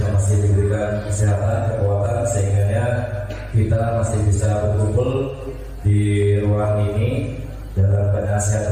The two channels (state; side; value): identical; both; correlation 1.00